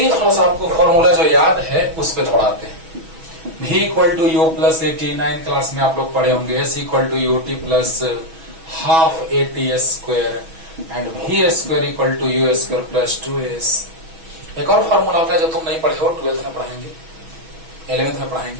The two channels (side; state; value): left; late; 6.2 ms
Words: थोड़ा सा आपको फॉर्मूला जो याद है उस पे थोड़ा आते हैं। v equal to u plus a t, 9 class में आप लोग पढ़े होंगे। s equal to u t plus half a t square and v square equal to u square plus 2s। एक और फॉर्मूला होता है जो तुम नहीं पढ़े हो, 12th में पढ़ाएंगे, 11th में